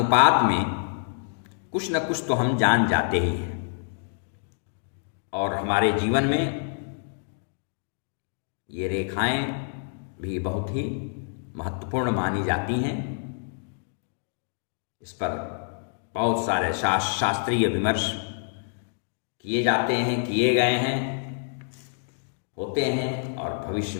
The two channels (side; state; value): right; silent; digital silence